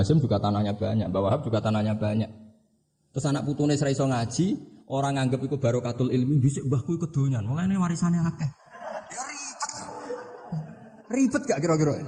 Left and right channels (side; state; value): both; identical; correlation 1.00